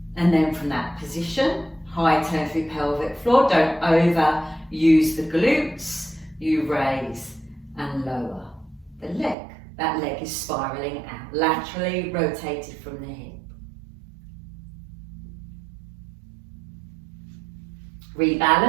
And then from that position, high tone through pelvic floor, don't overuse the glutes, you raise and lower the leg. That leg is spiraling out, laterally rotated from the hip.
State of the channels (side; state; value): left; drops out; at 9.3 s